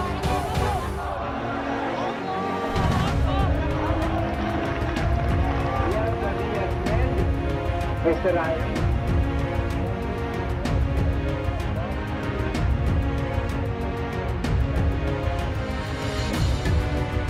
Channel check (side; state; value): both; identical; correlation 1.00